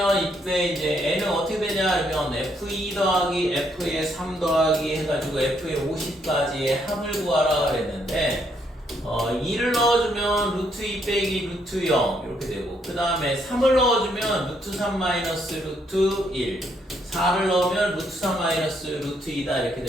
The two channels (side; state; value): both; normal; correlation 0.73